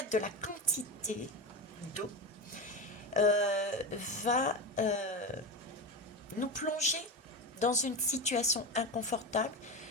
de la quantité d'eau, va nous plonger dans une situation inconfortable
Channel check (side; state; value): both; normal; correlation 0.20